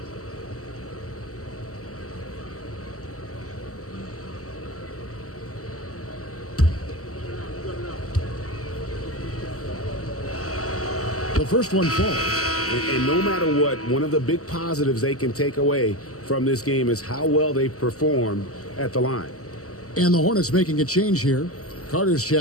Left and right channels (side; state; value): right; late; 0.65 ms